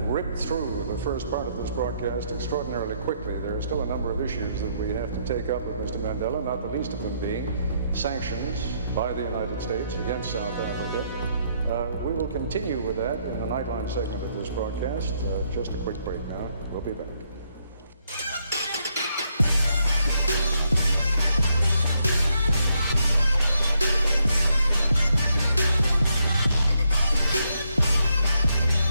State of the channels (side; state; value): both; inverted; correlation -0.75